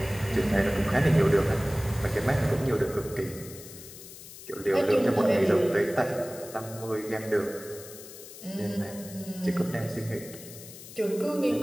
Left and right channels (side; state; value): left; noise; hiss, 15 dB below the sound